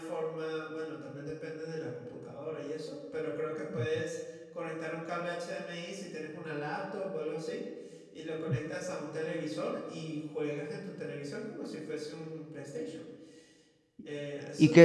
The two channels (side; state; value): both; identical; correlation 1.00